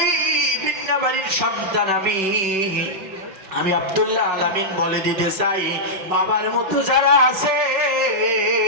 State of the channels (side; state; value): left; late; 5.2 ms